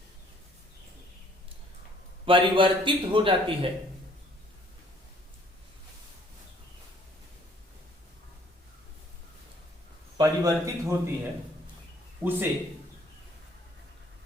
परिवर्तित हो जाती है, परिवर्तित होती है, उसे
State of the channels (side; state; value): both; normal; correlation 0.60